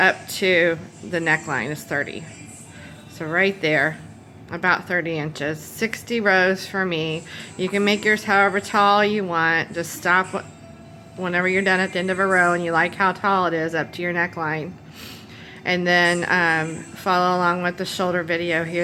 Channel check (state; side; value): identical; both; correlation 1.00